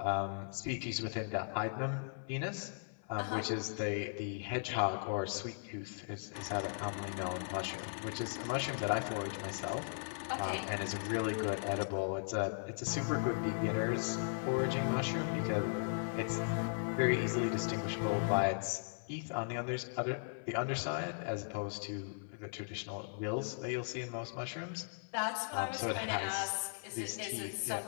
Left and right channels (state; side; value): silent; right; 53 dB below the other